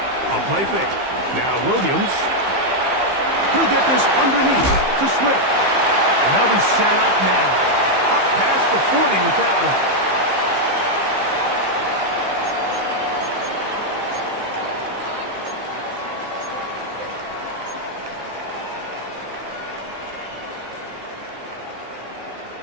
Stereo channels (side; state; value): left; late; 15 ms